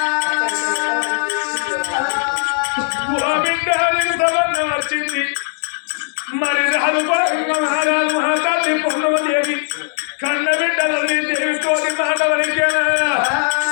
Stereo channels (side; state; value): right; silent; digital silence